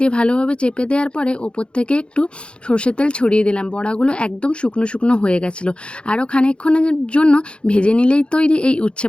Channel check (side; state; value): right; late; 0.056 ms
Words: দিয়ে ভালোভাবে চেপে দেওয়ার পরে ওপর থেকে একটু সর্ষের তেল ছড়িয়ে দিলাম। বড়াগুলো একদম শুকনো শুকনো হয়ে গেছিলো। আরও খানিকক্ষণের জন্য ভেজে নিলেই তৈরি এই উচ্ছে